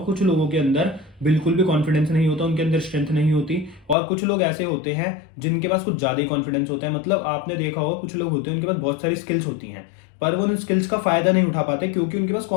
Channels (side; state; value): right; drops out; at 4.0 s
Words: कुछ लोगों के अंदर बिल्कुल भी कॉन्फिडेंस नहीं होता, उनके अंदर स्ट्रेंथ नहीं होती, और कुछ लोग ऐसे होते हैं जिनके पास कुछ ज्यादा ही कॉन्फिडेंस होता है। मतलब आपने देखा होगा कुछ लोग होते हैं उनके पास बहुत सारी स्किल्स होती हैं, पर वो उन स्किल्स का फायदा नहीं उठा पाते क्योंकि उनके पास